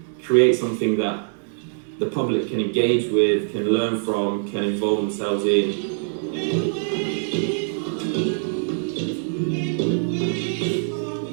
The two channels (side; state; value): left; silent; digital silence